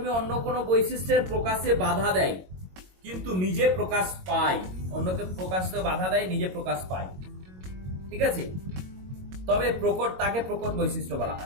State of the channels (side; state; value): left; late; 22 ms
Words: অন্য কোনো বৈশিষ্ট্যের প্রকাশে বাধা দেয় কিন্তু নিজে প্রকাশ পায়, অন্যকে প্রকাশে বাধা দেয়, নিজে প্রকাশ পায়, ঠিক আছে, তবে প্রকট, তাকে প্রকট বৈশিষ্ট্য বলা